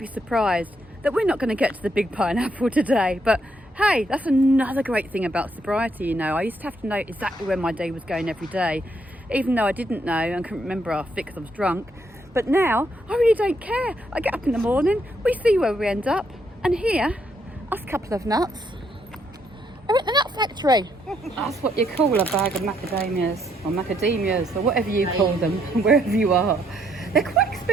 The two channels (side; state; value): both; normal; correlation 0.73